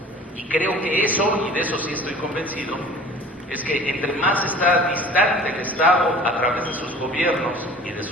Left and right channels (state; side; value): normal; both; correlation 0.44